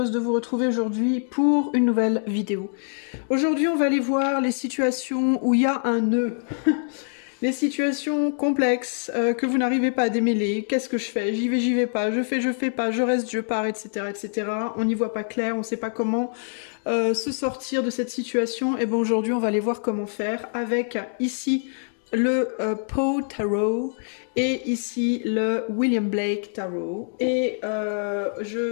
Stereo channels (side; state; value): right; silent; digital silence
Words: de vous retrouver aujourd'hui pour une nouvelle vidéo. Aujourd'hui on va aller voir les situations où il y a un nœud. Les situations complexes que vous n'arrivez pas à démêler. Qu'est-ce que je fais? J'y vais pas. Je fais pas. Je reste, je pars, etc. etc. On n'y voit pas clair, on ne sait pas comment se sortir de cette situation. Et bon, aujourd'hui on va aller voir comment faire avec ici le Poe Tarot et ici le William Blake Tarot. Et